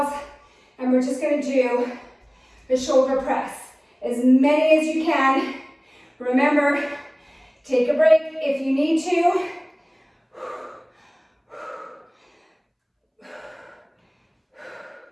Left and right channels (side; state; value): both; identical; correlation 1.00